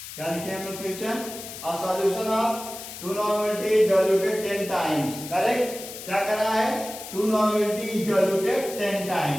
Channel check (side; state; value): left; noise; hiss, 11 dB below the sound